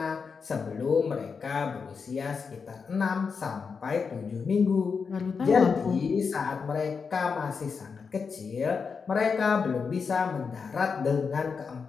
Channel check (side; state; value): right; quieter; 5.5 dB